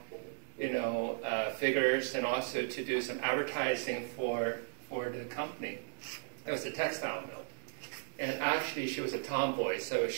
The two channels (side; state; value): left; silent; digital silence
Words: figures and also to do some advertising for the company. It was a textile mill. And actually, she was a tomboy, so